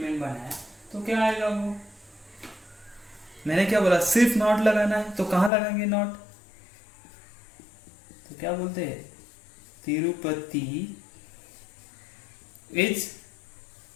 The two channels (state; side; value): drops out; right; at 5.5 s